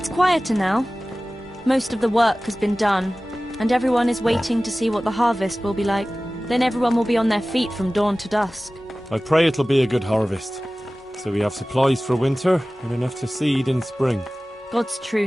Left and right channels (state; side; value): normal; both; correlation 0.97